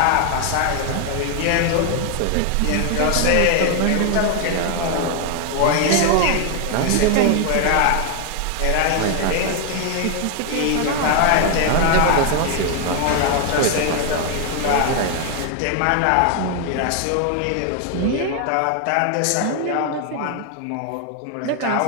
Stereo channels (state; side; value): different; both; correlation 0.00